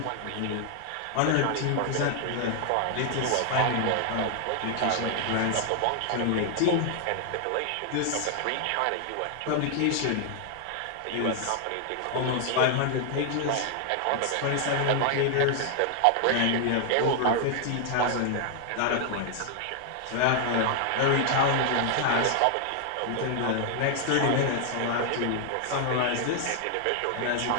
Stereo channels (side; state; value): both; different; correlation 0.00